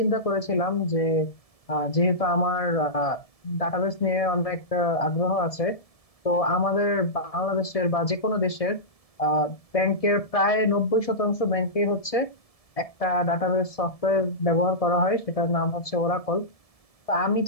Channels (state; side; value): late; right; 1.7 ms